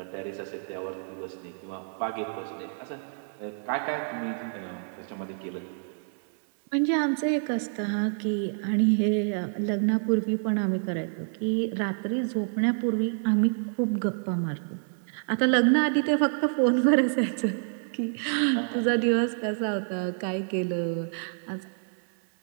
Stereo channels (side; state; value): left; silent; 59 dB below the other